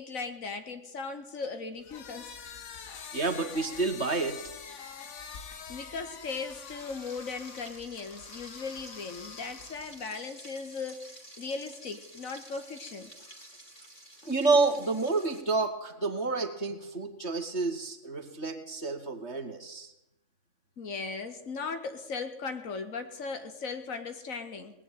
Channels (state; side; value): late; right; 3.5 ms